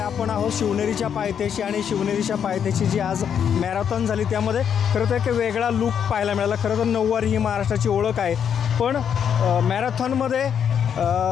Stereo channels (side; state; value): right; quieter; 8.1 dB